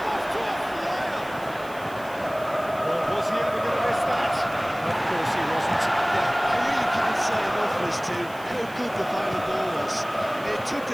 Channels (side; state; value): right; noise; hiss, 21 dB below the sound